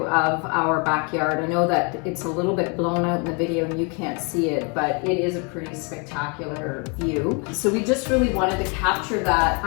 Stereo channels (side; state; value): right; quieter; 34.1 dB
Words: of our backyard. I know that it's a little bit blown out in the video and you can't see it, but it is a pretty spectacular view. So we just really wanted to capture that